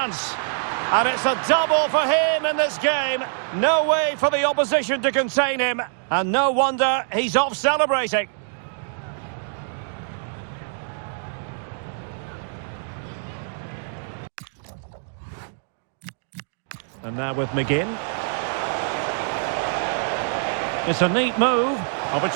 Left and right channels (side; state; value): left; silent; digital silence